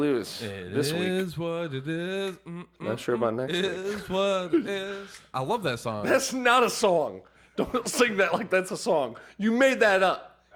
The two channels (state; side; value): identical; both; correlation 1.00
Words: this It week. is what it is. Not sure about next week. Is what it is. I love that song. That's not a song. Don't sing that like that's a song. You made that up.